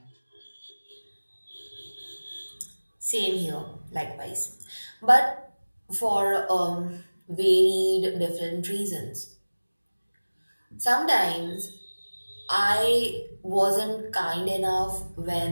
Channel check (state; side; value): inverted; both; correlation -1.00